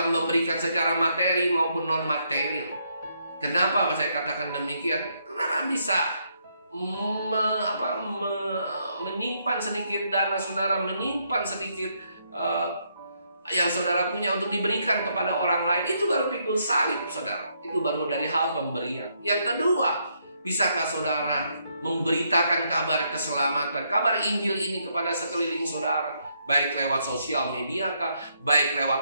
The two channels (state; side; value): inverted; both; correlation -0.75